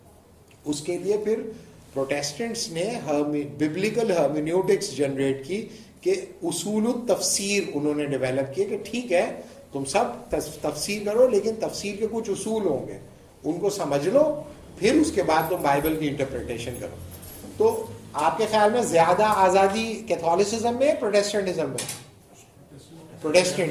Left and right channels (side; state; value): both; identical; correlation 1.00